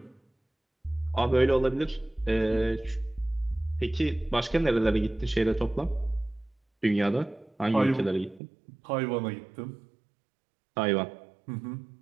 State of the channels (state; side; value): drops out; left; at 8.4 s